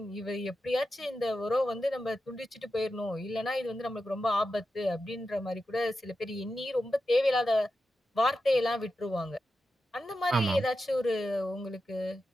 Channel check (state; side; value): normal; both; correlation 0.90